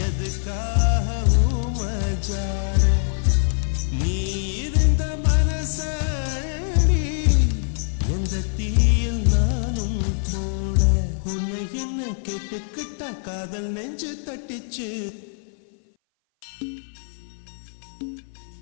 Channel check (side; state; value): right; silent; 58 dB below the other